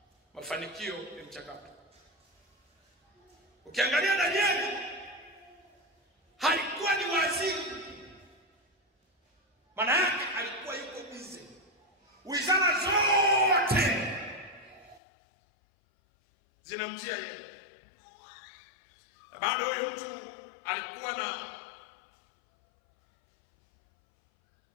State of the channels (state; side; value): drops out; right; at 15.0 s